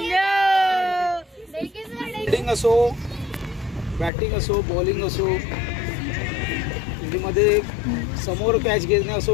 फिल्डिंग असो, बॅटिंग असो, बॉलिंग असो, मध्ये समोर कॅच घेणे असो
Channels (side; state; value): right; drops out; at 4.1 s